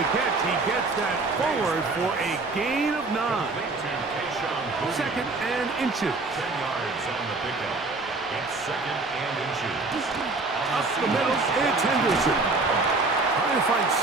catch, he gets that forward for a gain of 9. Second and inches. 10 yards on the pickup. It's second and inches. Up the middle, it's Henderson. Trying to find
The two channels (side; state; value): left; quieter; 3.5 dB